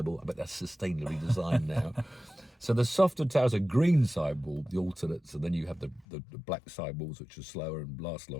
I bet that's sustainably designed now. So the softer tyres are green sidewall, the alternates, and then you have the black sidewalls, which are slower and last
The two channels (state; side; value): drops out; right; at 6.1 s